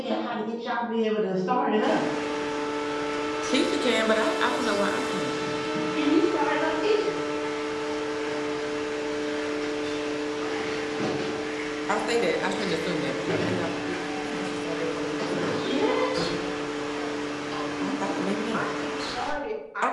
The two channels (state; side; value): identical; both; correlation 1.00